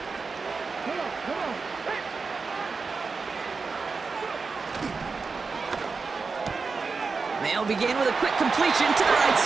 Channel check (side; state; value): left; quieter; 4.6 dB